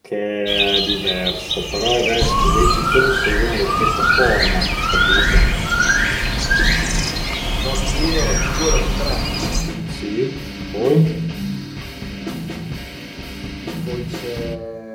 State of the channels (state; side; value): identical; both; correlation 1.00